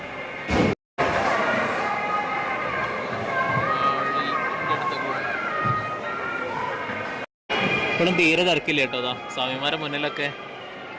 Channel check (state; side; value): identical; both; correlation 1.00